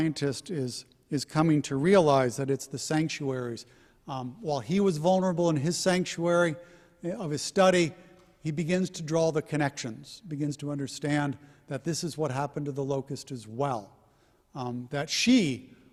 is coming to realize, that it's the sanctuaries. While he was vulnerable in his sanctuary of his study, he begins to draw the connections, begins to understand that this is what happened to the locust as well, that she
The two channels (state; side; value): identical; both; correlation 1.00